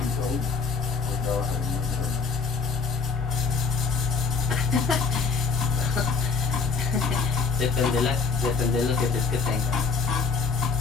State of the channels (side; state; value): right; quieter; 5.0 dB